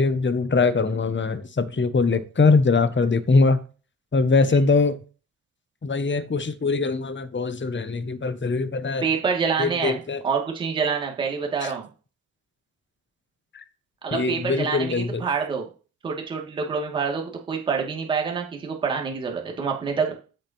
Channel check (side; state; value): both; normal; correlation 0.42